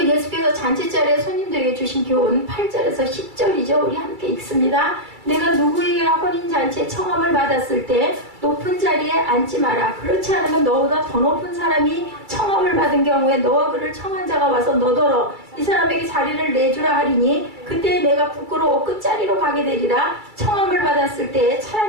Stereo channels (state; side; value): late; left; 2.3 ms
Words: 예수께서 잔치자리에 손님들에게 주신 교훈 8절에서 10절이죠. 우리 함께 읽습니다. 내가 누구에게나 혼인잔치에 청함을 받았을 때 높은 자리에 앉지 마라. 그렇지 않으면 너보다 더 높은 사람이 청함을 받은 경우에 너와 그를 청한 자가 와서 너더러 이 사람에게 자리를 내주라 하리니 그때 내가 부끄러워 끝자리로 가게 되리라. 청함을 받았을 때